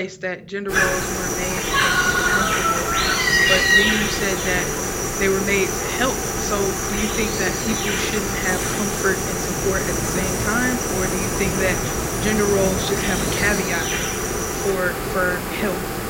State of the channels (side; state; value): both; identical; correlation 1.00